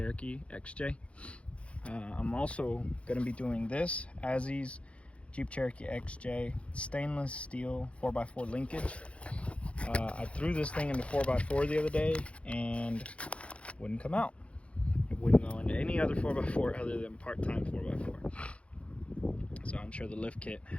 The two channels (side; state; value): right; late; 0.061 ms